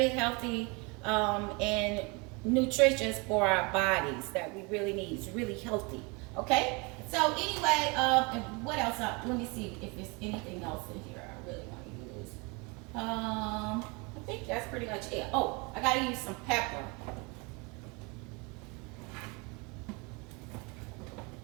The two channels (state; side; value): quieter; left; 29.0 dB